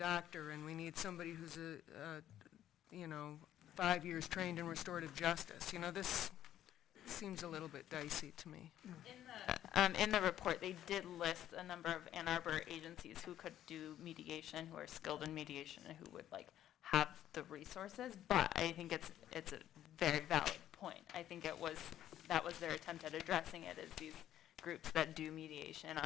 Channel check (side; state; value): right; quieter; 11.8 dB